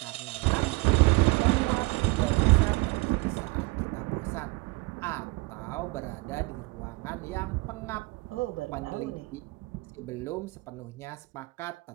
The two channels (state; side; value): quieter; left; 24.1 dB